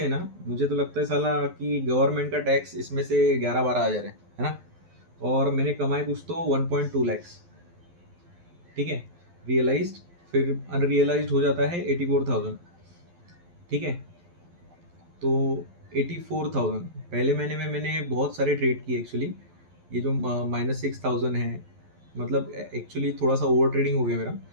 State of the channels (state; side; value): late; left; 12 ms